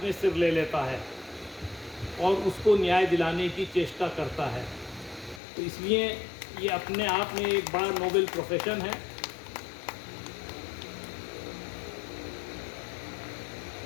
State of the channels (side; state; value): right; drops out; at 5.4 s